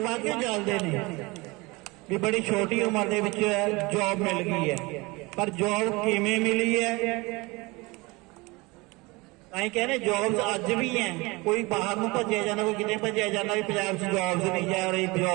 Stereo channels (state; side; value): quieter; left; 24.3 dB